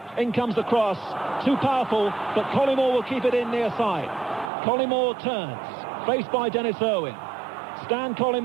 In comes the cross. Too powerful, but Collymore will keep it in near side. Collymore turns, faced by Dennis Irwin. Stan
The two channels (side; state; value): left; drops out; at 4.5 s